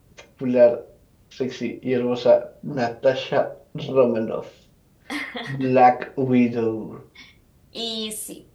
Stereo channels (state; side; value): identical; both; correlation 1.00